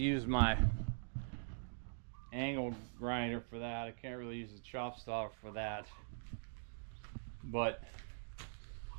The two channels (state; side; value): silent; left; digital silence